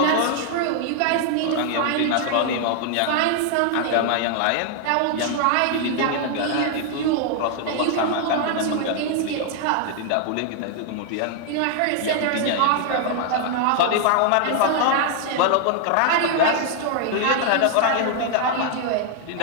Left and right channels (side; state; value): both; different; correlation 0.00